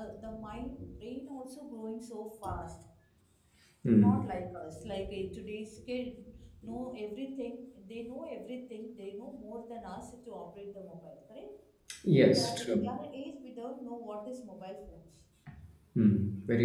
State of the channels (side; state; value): both; identical; correlation 1.00